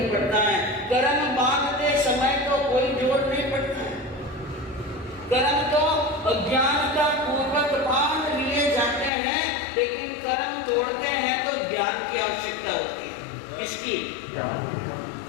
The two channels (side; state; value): right; drops out; at 9.1 s